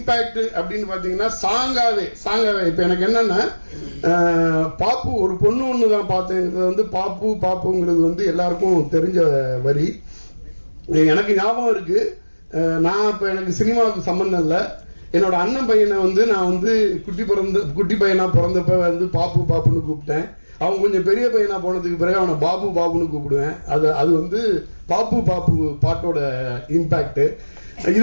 அப்படின்னு பாத்தீங்கன்னா சாங்காவே இப்ப எனக்கு என்னன்னா, பாப்பு ஒரு பொண்ணு ஒண்ணுதான் பார்த்தேங்கிறது வந்து பாப்புங்கிறது வந்து எல்லாருக்கும் தெரிஞ்ச வரி. எனக்கு ஞாபகம் இருக்கு, நான் இப்ப எனக்கு சினிமாவுக்கு சம்பந்தம் இல்லை. என்னோட அண்ணன் பையனை வந்து நான் வந்து குட்டி பையனா பிறந்தப்ப வந்து பாப்புன்னு கூப்பிட்டேன். அவன் கொஞ்சம் பெரிய பையனா போனதுக்கு பிறகு அவனை பாப்புன்னு கூப்பிடுவேன். அது வந்து பாப்பு பாட்டோட இம்பாக்ட்.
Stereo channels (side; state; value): both; inverted; correlation -1.00